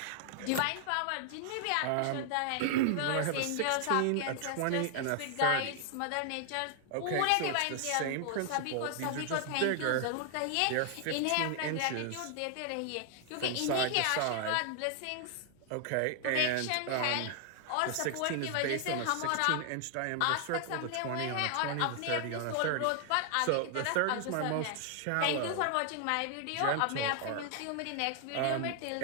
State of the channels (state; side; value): different; both; correlation 0.00